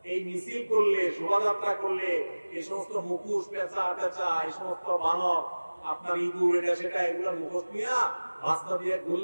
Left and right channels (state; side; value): inverted; both; correlation -1.00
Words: এই মিছিল করলে, শোভাযাত্রা করলে এই সমস্ত মুখোশ, পেঁচা টেচা, এই সমস্ত বানর, আপনার ইঁদুর, এটা সেটা, এগুলো মুখোশ নিয়ে রাস্তা দিয়ে